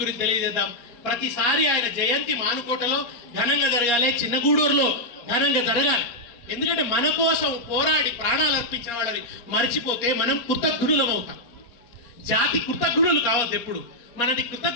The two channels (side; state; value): right; late; 4.2 ms